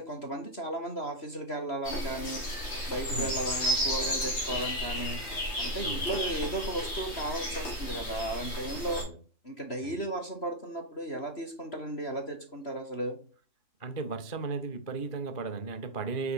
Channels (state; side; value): late; right; 3.2 ms